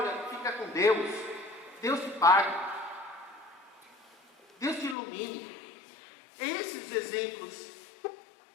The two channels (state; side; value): drops out; right; at 5.0 s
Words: fica com Deus. Deus te pague. Deus te ilumine. Esses exemplos